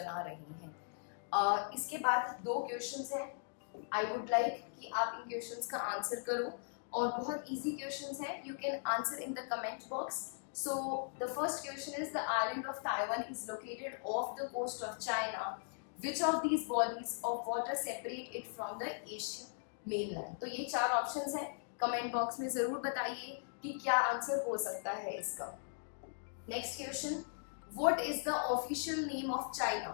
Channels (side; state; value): right; silent; digital silence